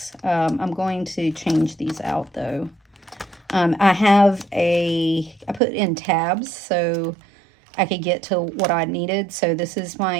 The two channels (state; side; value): drops out; left; at 5.6 s